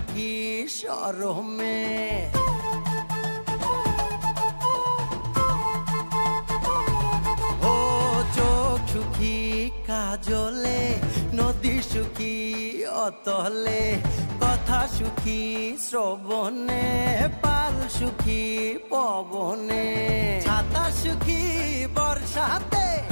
শরমে। ও চোখ সুখী কাজলে, নদী সুখী অতলে, কথা সুখী শ্রবণে, পাল সুখী পবনে, ছাতা সুখী বর্ষাতে,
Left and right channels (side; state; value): both; inverted; correlation -1.00